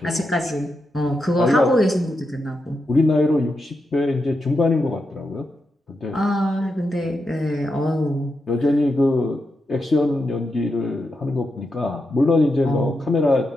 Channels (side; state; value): both; normal; correlation 0.86